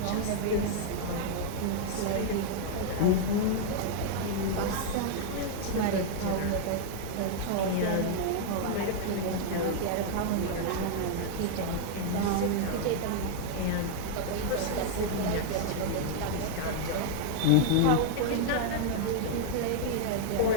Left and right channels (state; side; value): different; both; correlation 0.00